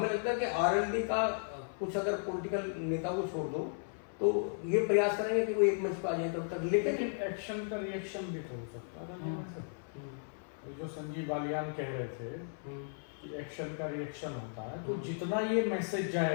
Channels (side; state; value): right; silent; 54 dB below the other